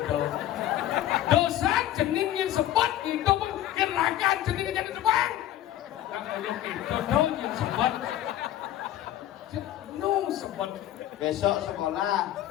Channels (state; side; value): quieter; right; 12.8 dB